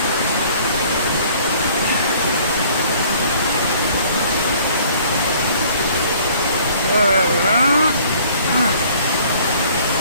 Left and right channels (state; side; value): inverted; both; correlation -0.55